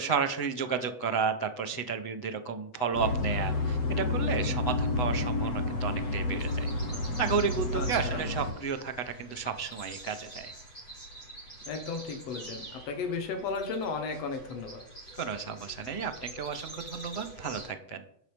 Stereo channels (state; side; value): late; right; 8.0 ms